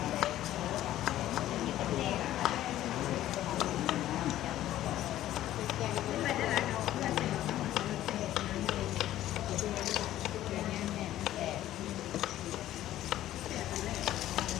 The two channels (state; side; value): quieter; right; 13.5 dB